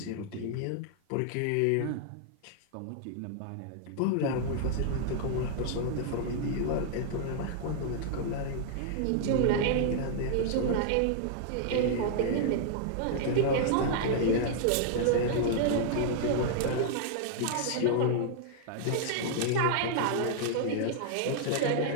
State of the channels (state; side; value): different; both; correlation -0.01